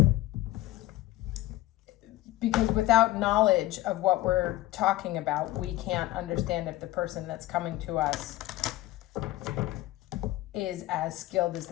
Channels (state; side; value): quieter; right; 16.9 dB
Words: Because without knowledge of what we're talking about, we can't understand if the person that's coming to us is as skilled as